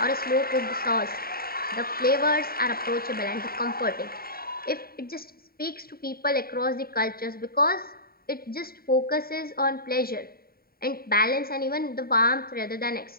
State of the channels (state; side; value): late; right; 0.43 ms